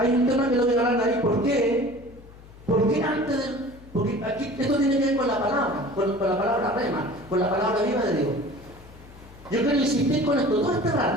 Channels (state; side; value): noise; left; hum, 20 dB below the sound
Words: un tema que lo voy a hablar ahí. ¿Por qué? Porque antes de... Porque aquí esto tiene que ver con la palabra, con la palabra rema, con la palabra viva de Dios. Yo quiero insistir con esto todo este